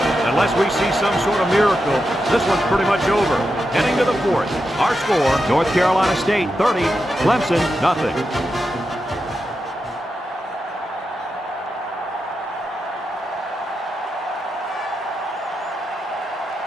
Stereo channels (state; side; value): normal; both; correlation 0.88